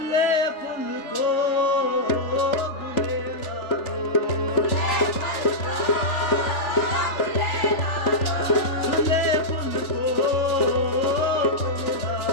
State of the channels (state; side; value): late; right; 3.4 ms